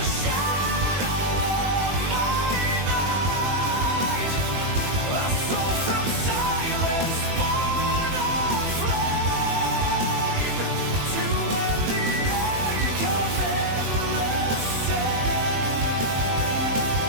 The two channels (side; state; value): left; late; 21 ms